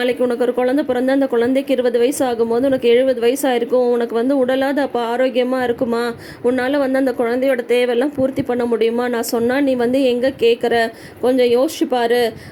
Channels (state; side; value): identical; both; correlation 1.00